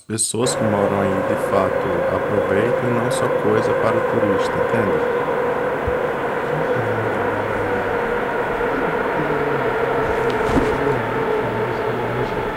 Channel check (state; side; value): identical; both; correlation 1.00